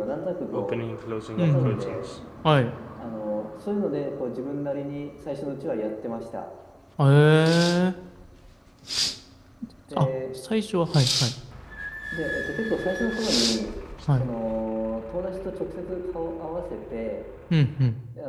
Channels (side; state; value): both; identical; correlation 1.00